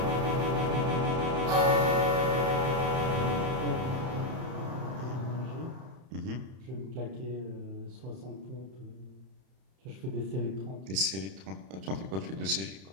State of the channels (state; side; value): late; left; 31 ms